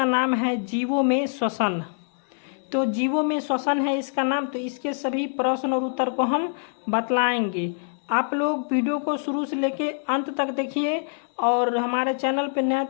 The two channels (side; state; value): right; silent; 62 dB below the other